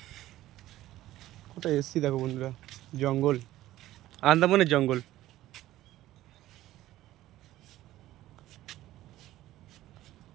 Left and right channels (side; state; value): left; quieter; 15.0 dB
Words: কোথায় এসছি দেখো বন্ধুরা, জঙ্গল, আন্দামানের জঙ্গল।